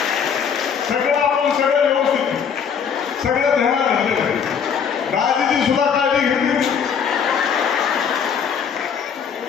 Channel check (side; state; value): right; quieter; 7.1 dB